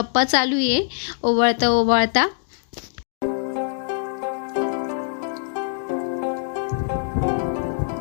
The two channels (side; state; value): right; silent; digital silence